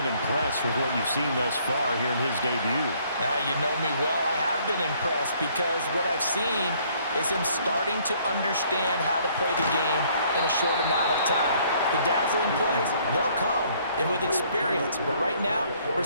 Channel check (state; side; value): inverted; both; correlation -0.63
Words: impressed with what you've seen thus far here in his debut. Now, you know me well. I have been impressed because what I've seen is him starting to understand how to play the game in a short amount of time. The dazzling plays, they'll come and with experience. But right now, we're